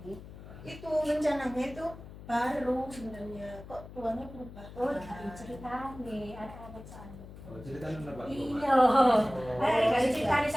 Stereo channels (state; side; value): noise; left; hum, 15 dB below the sound